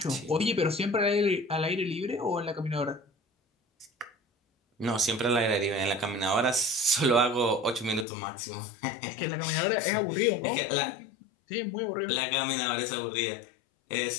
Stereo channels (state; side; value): drops out; right; at 8.1 s